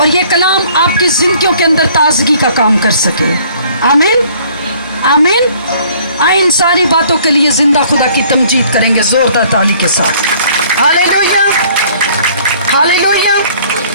ये कलाम आपकी जिंदगियों के अंदर ताजगी का काम कर सके। आमीन आमीन। आए इन सारी बातों के लिए जिंदा खुदा की तमजीद करेंगे जोरदार ताली के साथ। Hallelujah hallelujah.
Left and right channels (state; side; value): inverted; both; correlation -0.57